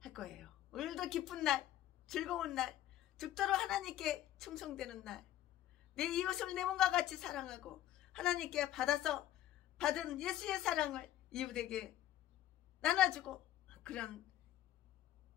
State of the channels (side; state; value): right; quieter; 13.1 dB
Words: 할 거예요. 오늘도 기쁜 날, 즐거운 날, 죽도록 하나님께 충성되는 날, 내 이웃을 내 몸과 같이 사랑하고 하나님께 받은 예수의 사랑을 이웃에게 나눠주고 그런